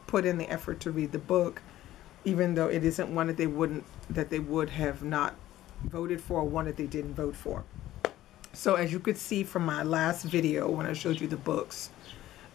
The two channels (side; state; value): right; quieter; 14.4 dB